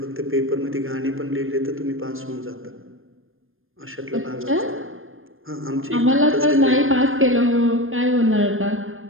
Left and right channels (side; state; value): left; late; 0.59 ms